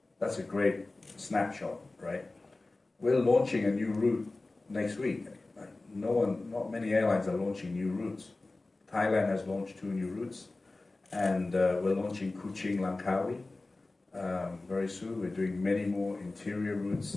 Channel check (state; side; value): quieter; right; 3.1 dB